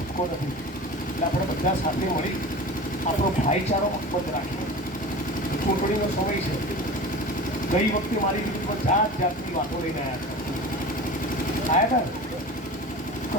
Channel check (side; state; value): both; normal; correlation 0.35